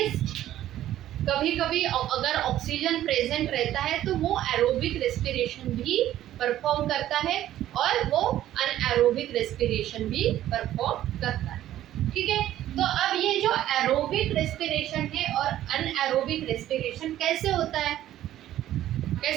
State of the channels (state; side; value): quieter; left; 12.9 dB